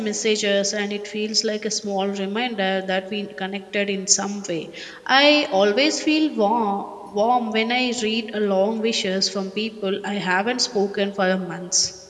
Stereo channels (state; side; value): identical; both; correlation 1.00